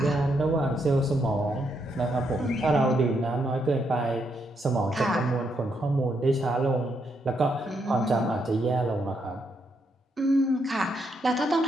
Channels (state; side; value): normal; both; correlation 0.78